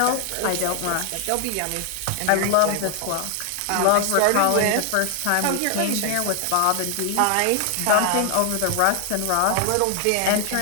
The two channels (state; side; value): different; both; correlation 0.00